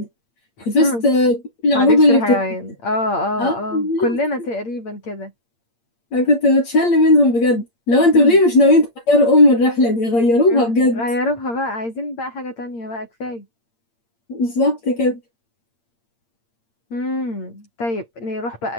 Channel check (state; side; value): late; right; 8.7 ms